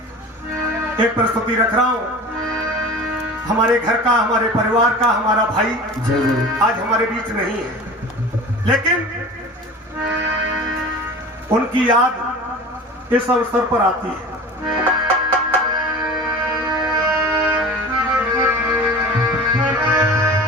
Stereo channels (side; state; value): both; normal; correlation 0.37